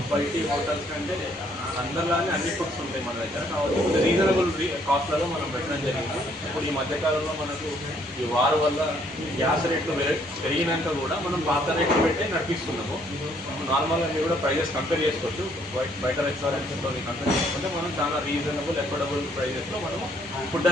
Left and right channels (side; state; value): both; normal; correlation 0.66